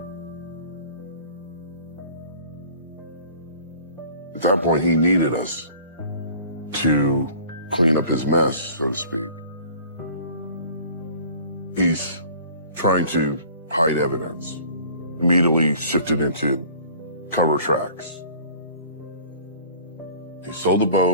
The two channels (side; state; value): both; inverted; correlation -0.47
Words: At that point, he needed us to clean up his mess, so to speak. He's trying to hide evidence, immediately shifted into cover tracks. He sold the